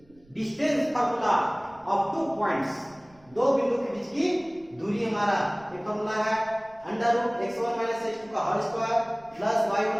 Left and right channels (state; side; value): noise; right; rumble, 29 dB below the sound